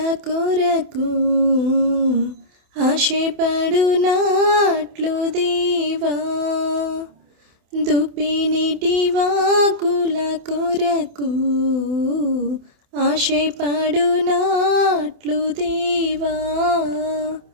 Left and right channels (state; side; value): late; left; 27 ms